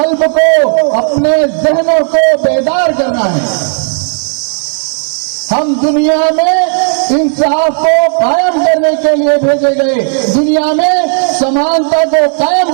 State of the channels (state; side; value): silent; left; digital silence